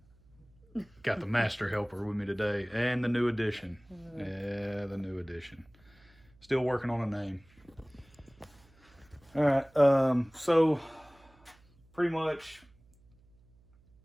Got the master helper with me today and the new edition. Yeah, the new edition. Still working on a name. All right, so pretty much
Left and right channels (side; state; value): right; noise; hum, 29 dB below the sound